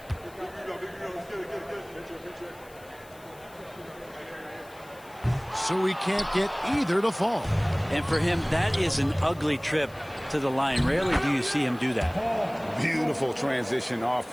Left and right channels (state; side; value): noise; left; hiss, 24 dB below the sound